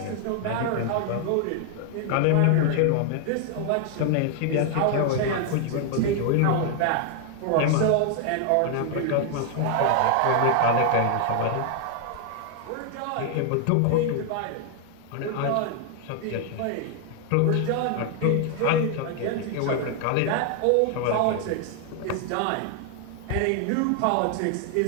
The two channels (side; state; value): both; different; correlation 0.00